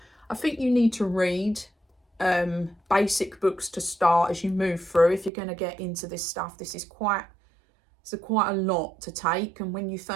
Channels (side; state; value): left; drops out; at 5.3 s